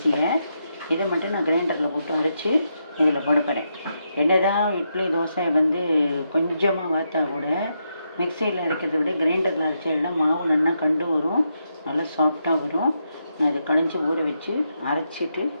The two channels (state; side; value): inverted; both; correlation -0.82